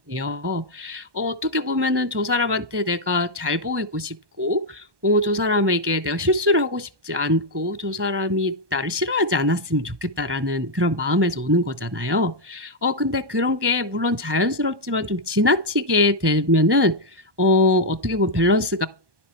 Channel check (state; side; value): late; left; 1.1 ms